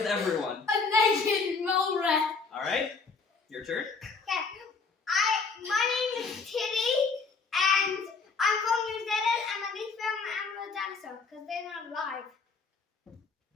everyone. A naked mole rat. All right, your turn. My name is Kitty, and I'm from New Zealand, and my least favorite animal is dinosaur because they're not alive.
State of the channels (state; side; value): quieter; right; 4.6 dB